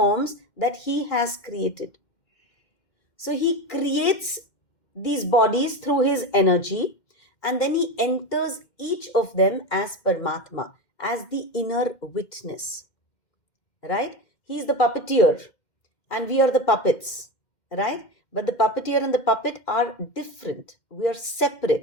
that he has created. So he creates these bodies through his energy, and then he enters each of them as Paramatma, as the inner witness. Right? He is the puppeteer, and we are the puppets. Right? But the puppeteer and the puppet are different. We are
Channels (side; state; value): right; late; 2.1 ms